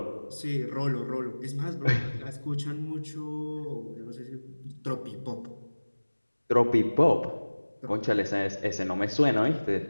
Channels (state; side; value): inverted; both; correlation -1.00